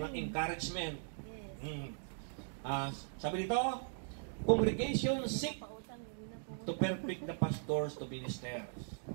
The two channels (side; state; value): left; silent; digital silence